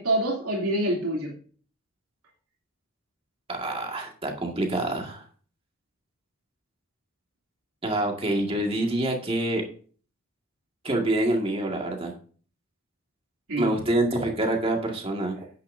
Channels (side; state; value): both; normal; correlation 0.42